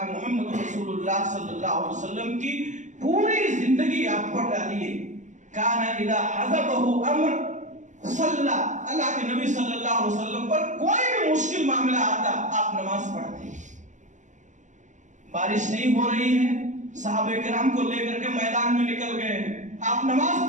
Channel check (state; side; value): late; left; 0.35 ms